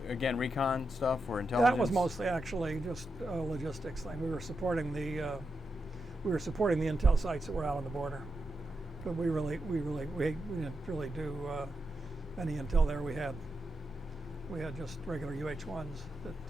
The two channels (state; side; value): normal; both; correlation 0.87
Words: again, recon stuff or intelligence? That was mostly actually just a logistics thing. We were supporting the intel sites that were out on the border, but we didn't really do any intel there. We had just regular UH-1s